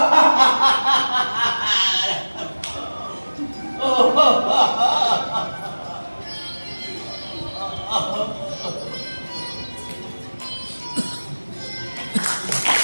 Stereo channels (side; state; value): both; inverted; correlation -1.00